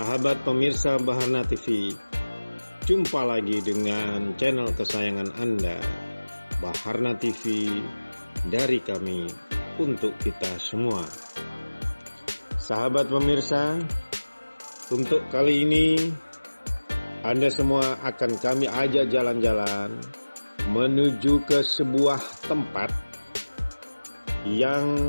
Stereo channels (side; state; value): both; inverted; correlation -1.00